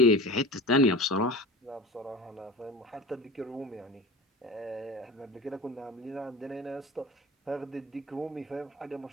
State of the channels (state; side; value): normal; both; correlation 0.35